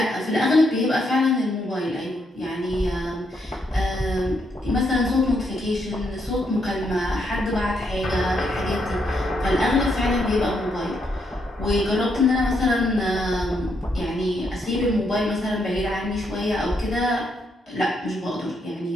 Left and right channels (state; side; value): normal; both; correlation 0.77